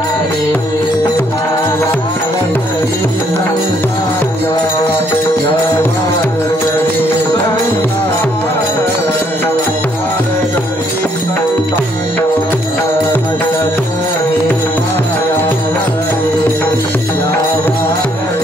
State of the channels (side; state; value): both; normal; correlation 0.69